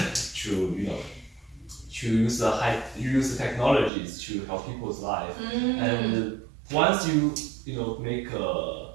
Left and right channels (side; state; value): left; drops out; at 3.9 s